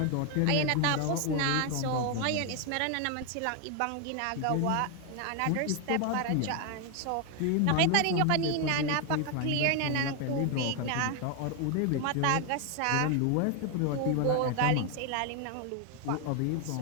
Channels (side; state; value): both; different; correlation 0.01